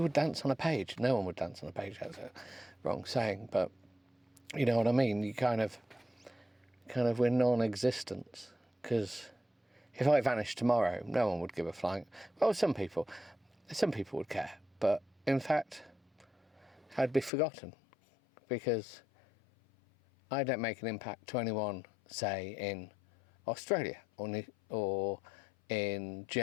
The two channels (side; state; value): right; drops out; at 17.3 s